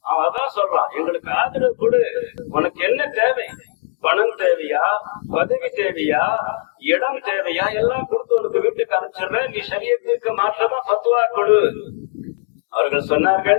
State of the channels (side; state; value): right; silent; digital silence